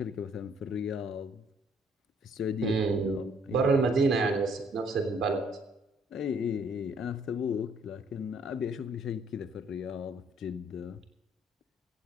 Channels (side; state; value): both; normal; correlation 0.63